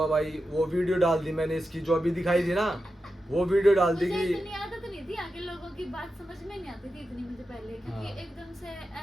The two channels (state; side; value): normal; both; correlation 0.90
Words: भाई, वो वीडियो डाल दी मैंने इसकी जो अभी दिखाई थी ना, वो वीडियो डाल दी मुझे कि इतनी आदत नहीं थी, आगे लोगों की बात समझ में नहीं आती थी इतनी मुझे पहले, क्योंकि हाँ। एकदम से